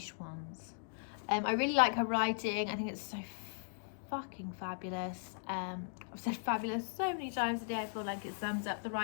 ones. I really like her writing. I think it's so fucking fabulous. I've said fabulous so many times today. I feel like it sums up the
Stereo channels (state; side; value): silent; right; digital silence